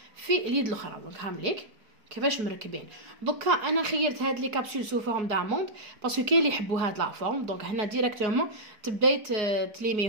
في اليد الاخرى. دونك هامليك كيفاش مركبين. دوكا انا خيرت هاد لي كابسول سو فورم داموند باسكو كاين اللي يحبوا هاد لا فورم. دونك هنا ديريكتومون تبداي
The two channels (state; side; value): late; left; 4.8 ms